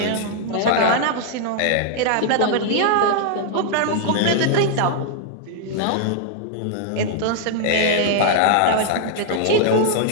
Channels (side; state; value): both; different; correlation 0.00